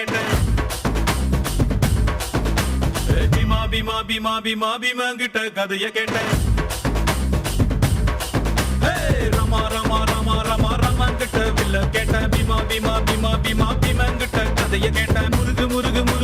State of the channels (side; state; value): both; identical; correlation 1.00